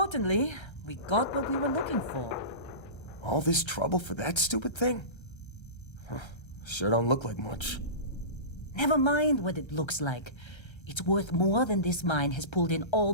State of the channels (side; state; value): right; late; 1.3 ms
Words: we got what we were looking for. All this trouble for that stupid thing? Huh, sure don't look like much. Never mind what it looks like. It's worth more than this mine has pulled in all